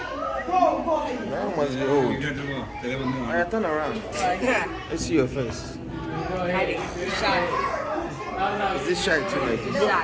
That one must be old. Alright, turn around. Let's see your face. Hiding. Shy. Is this shy too? Like this?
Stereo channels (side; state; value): both; identical; correlation 1.00